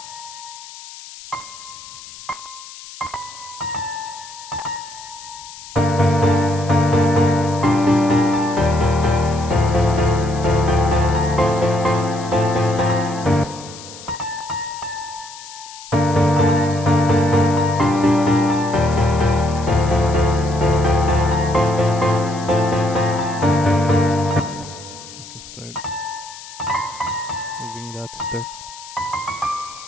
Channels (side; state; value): left; noise; hiss, 16 dB below the sound